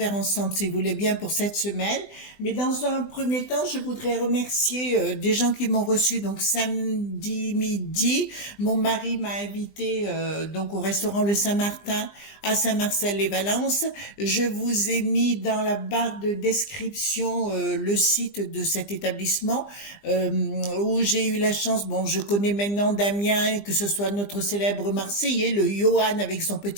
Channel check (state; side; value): late; right; 20 ms